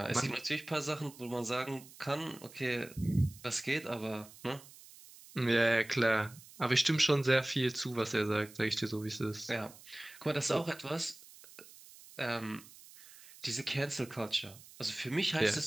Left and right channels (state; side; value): noise; right; hiss, 20 dB below the sound